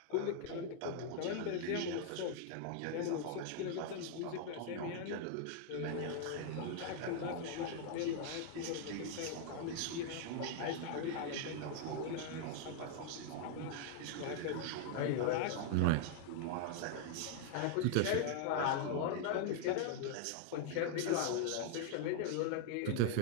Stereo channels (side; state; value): both; different; correlation 0.00